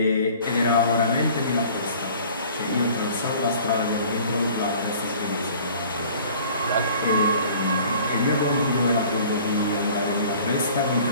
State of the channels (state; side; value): inverted; both; correlation -0.49